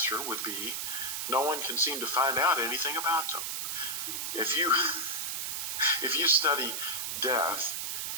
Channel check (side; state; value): right; noise; hiss, 2 dB below the sound